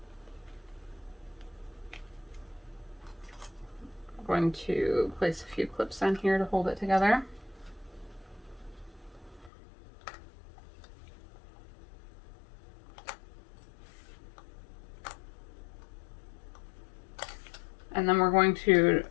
I'm going to place a few clips on here to hold it together. And then we're going to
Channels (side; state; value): right; drops out; at 9.5 s